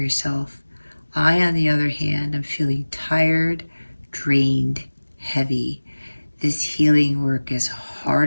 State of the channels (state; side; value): inverted; both; correlation -1.00